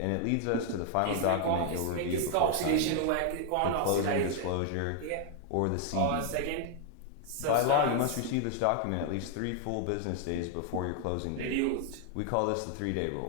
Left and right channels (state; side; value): different; both; correlation 0.00